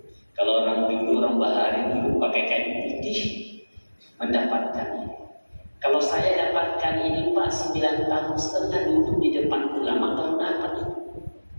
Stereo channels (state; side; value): inverted; both; correlation -1.00